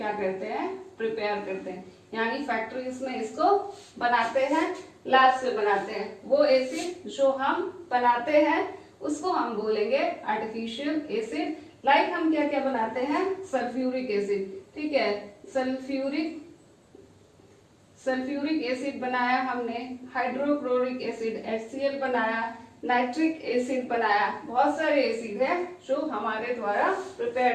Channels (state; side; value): identical; both; correlation 1.00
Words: करते हैं, प्रिपेयर करते हैं, यानी फैक्ट्रीज में इसको बनाते हैं, लैब से बनाते हैं। वो एसिड जो हम बनाते हैं उसको हम बोलेंगे आर्टिफिशियल एसिड। लाइक हम क्या क्या बनाते हैं, सल्फ्यूरिक एसिड, ठीक है, सल्फ्यूरिक एसिड बनाया हमने, हाइड्रोक्लोरिक एसिड HCl बनाया, नाइट्रिक एसिड बनाया, बहुत सारे एसिड है जो हमारे द्वारा प्रिपेयर